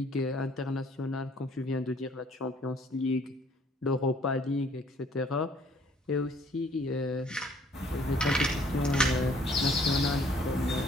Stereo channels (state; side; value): normal; both; correlation 0.60